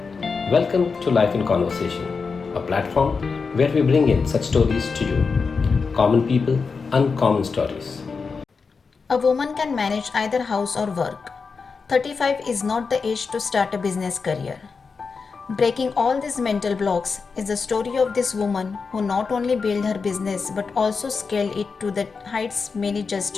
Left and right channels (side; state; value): right; quieter; 5.0 dB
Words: Welcome to Life in Conversation, a platform where we bring in such stories to you. Common people, uncommon stories. A woman can manage either house or work. 35 is not the age to start a business career. Breaking all these mental blocks is the story of this woman who not only built her business but also scaled it to the heights many just